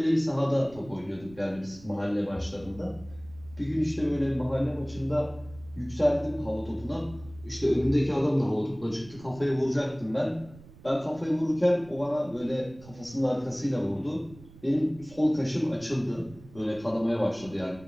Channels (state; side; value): noise; right; rumble, 21 dB below the sound